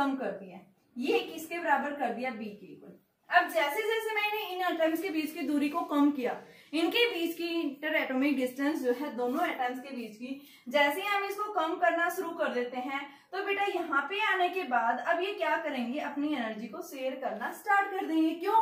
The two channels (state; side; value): identical; both; correlation 1.00